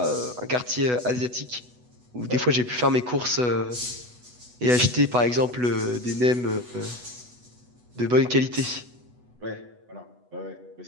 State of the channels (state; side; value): late; left; 8.1 ms